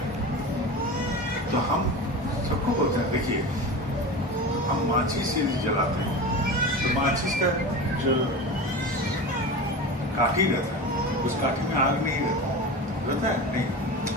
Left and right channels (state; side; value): normal; both; correlation 0.28